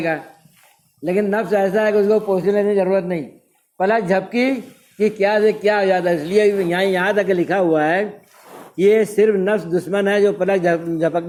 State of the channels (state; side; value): identical; both; correlation 1.00